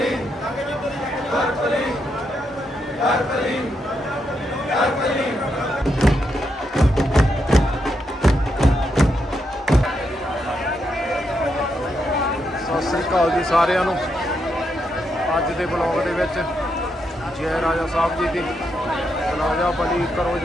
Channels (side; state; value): both; normal; correlation 0.81